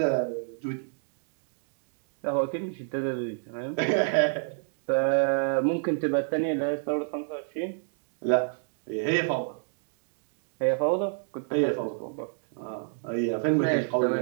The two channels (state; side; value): silent; left; digital silence